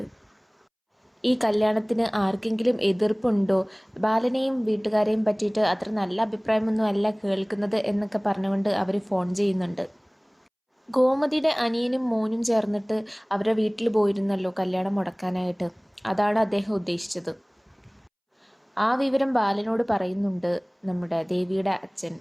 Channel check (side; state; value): both; identical; correlation 1.00